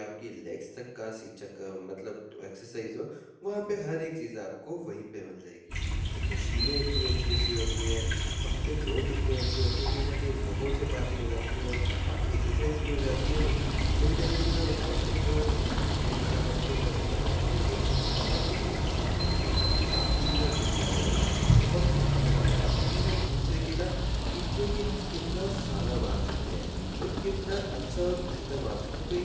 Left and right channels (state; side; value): identical; both; correlation 1.00